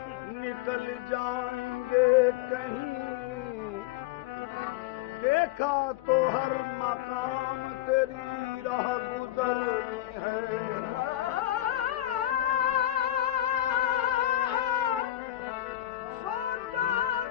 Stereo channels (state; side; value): quieter; right; 13.8 dB